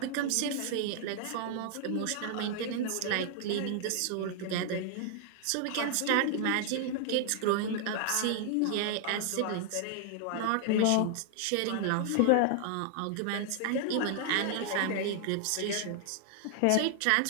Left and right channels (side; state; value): both; different; correlation 0.00